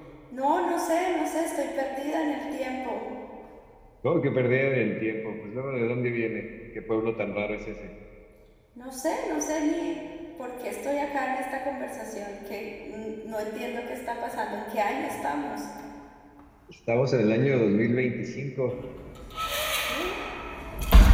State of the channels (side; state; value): both; identical; correlation 1.00